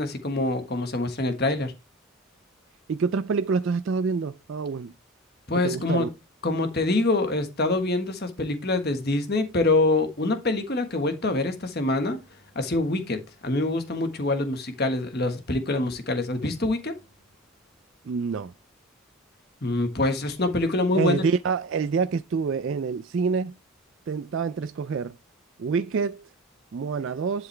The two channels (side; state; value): both; normal; correlation 0.32